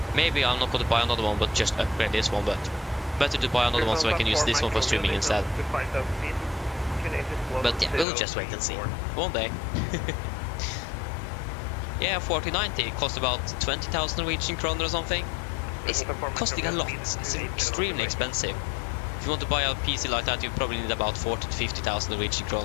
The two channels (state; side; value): drops out; right; at 8.1 s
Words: Maybe I'm not going to buy another one, but just upgrade this one. But better to buy another one so I can use this one for streaming instead. But yeah, we'll just wait and see. One day. Yeah, 4090 cost about 20,000 Norwegian kroner or something. It's costing a lot. It's extremely expensive. If you want to buy a PC like that, you probably need about 40 to 50,000 Norwegian